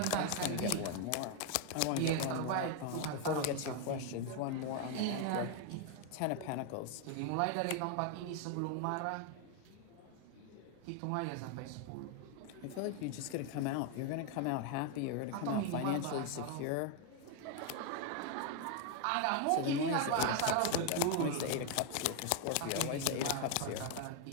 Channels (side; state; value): both; different; correlation 0.01